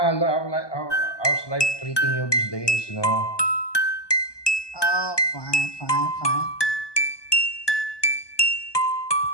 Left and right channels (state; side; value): late; right; 1.2 ms